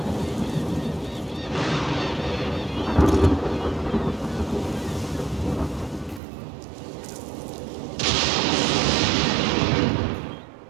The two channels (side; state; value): left; drops out; at 6.2 s